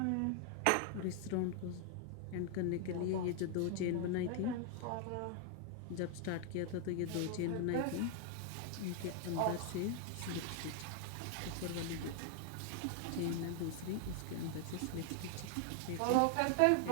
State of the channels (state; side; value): different; both; correlation 0.00